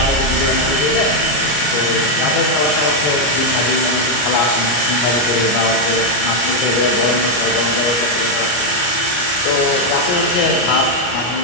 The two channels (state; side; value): late; right; 33 ms